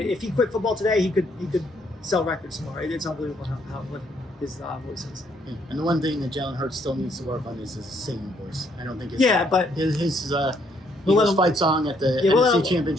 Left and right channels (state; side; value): normal; both; correlation 0.69